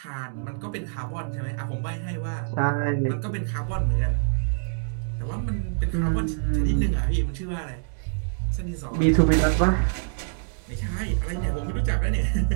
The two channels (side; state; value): left; silent; digital silence